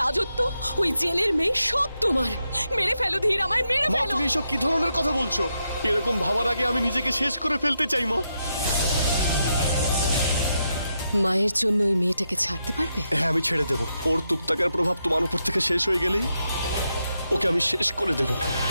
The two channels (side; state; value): both; inverted; correlation -0.83